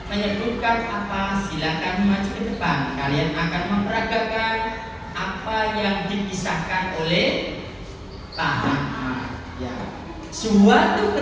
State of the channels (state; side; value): identical; both; correlation 1.00